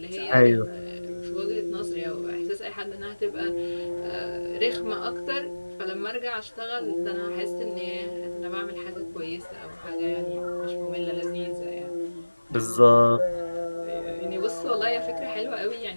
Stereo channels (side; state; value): both; inverted; correlation -1.00